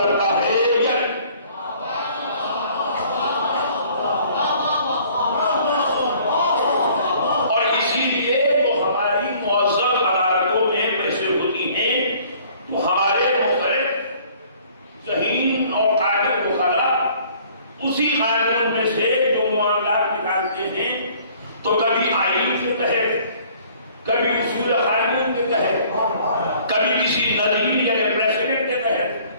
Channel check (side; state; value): both; inverted; correlation -0.55